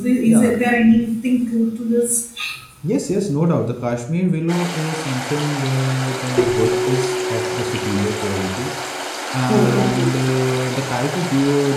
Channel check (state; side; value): identical; both; correlation 1.00